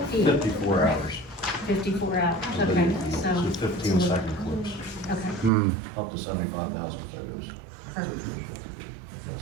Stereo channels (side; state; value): left; drops out; at 5.5 s